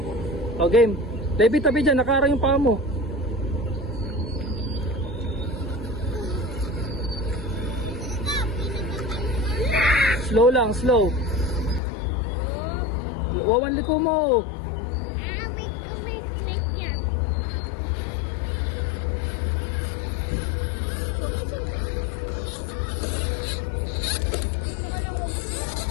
O, game. David, tabi dyan. Nakara yung paa mo. Slow lang, slow. Wawan liko mo.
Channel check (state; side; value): drops out; right; at 11.8 s